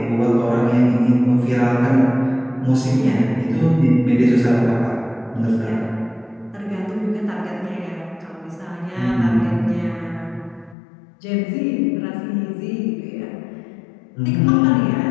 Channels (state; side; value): drops out; right; at 10.8 s